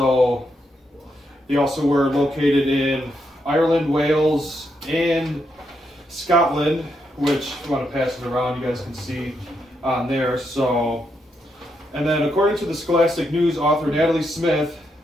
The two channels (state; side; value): normal; both; correlation 0.80